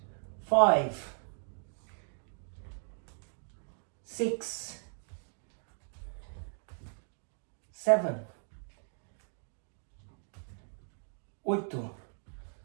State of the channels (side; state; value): left; silent; 53 dB below the other